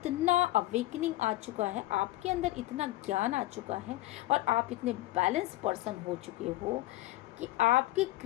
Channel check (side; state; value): right; quieter; 17.5 dB